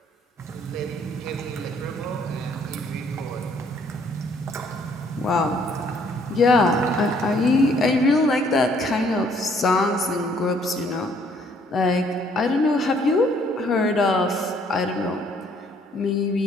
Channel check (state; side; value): normal; both; correlation 0.64